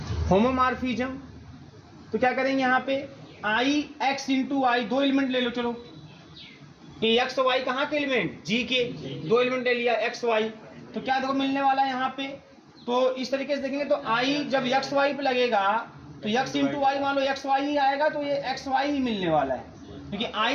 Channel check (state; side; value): identical; both; correlation 1.00